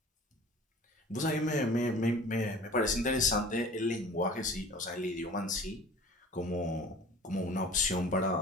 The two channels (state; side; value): normal; both; correlation 0.44